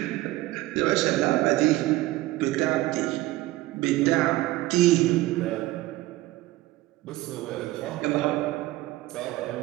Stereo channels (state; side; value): quieter; left; 17.7 dB